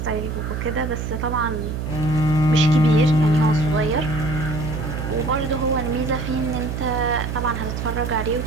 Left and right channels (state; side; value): noise; right; hum, 4 dB below the sound